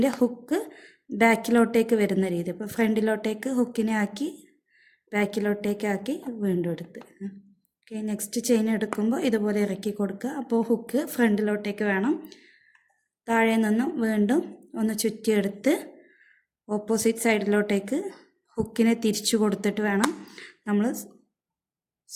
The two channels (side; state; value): both; identical; correlation 1.00